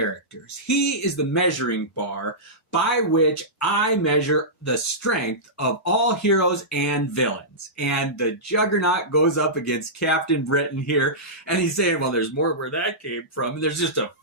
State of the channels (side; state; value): both; normal; correlation -0.16